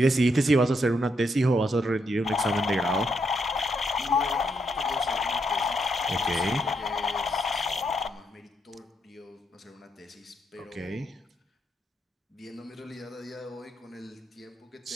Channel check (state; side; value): normal; both; correlation 0.78